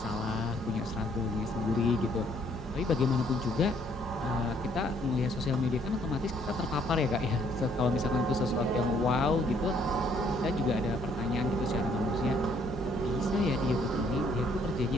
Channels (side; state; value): both; normal; correlation 0.65